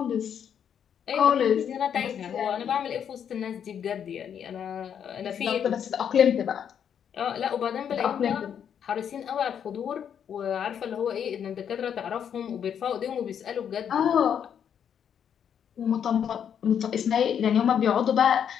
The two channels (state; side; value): quieter; right; 8.4 dB